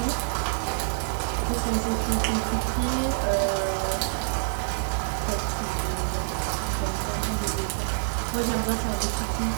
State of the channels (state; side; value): silent; left; digital silence